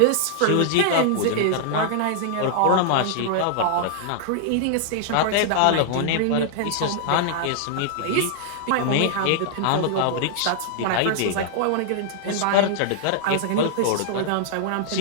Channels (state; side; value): different; both; correlation -0.01